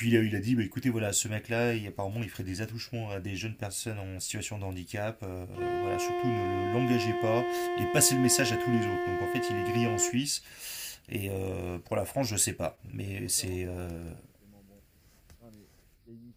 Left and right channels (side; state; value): both; identical; correlation 1.00